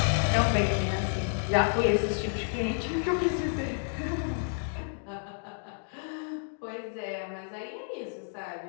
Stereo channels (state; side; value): silent; right; 58 dB below the other